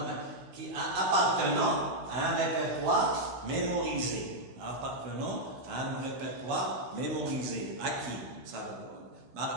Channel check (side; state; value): left; late; 16 ms